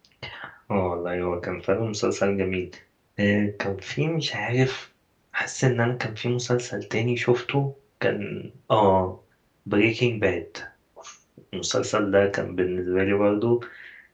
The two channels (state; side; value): identical; both; correlation 1.00